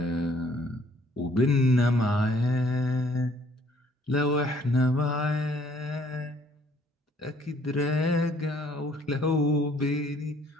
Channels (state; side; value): normal; both; correlation 0.62